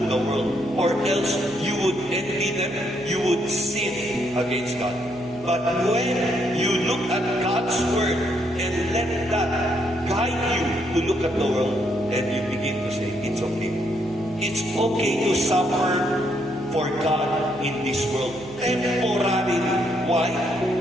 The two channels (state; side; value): noise; right; hum, 19 dB below the sound